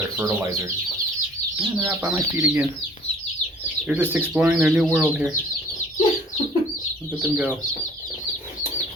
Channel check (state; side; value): normal; both; correlation 0.53